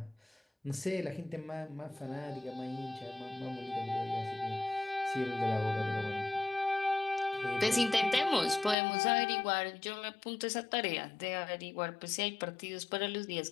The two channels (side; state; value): right; drops out; at 8.8 s